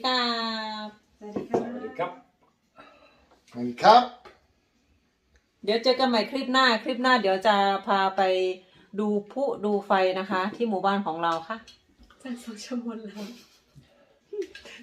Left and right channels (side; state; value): both; identical; correlation 1.00